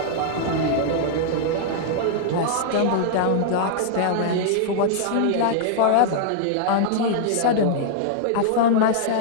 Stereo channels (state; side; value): different; both; correlation -0.01